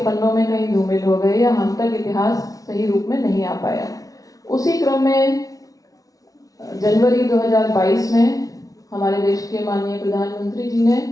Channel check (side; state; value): right; late; 0.17 ms